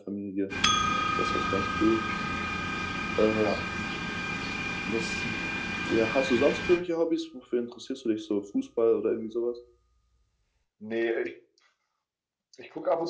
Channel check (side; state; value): both; identical; correlation 1.00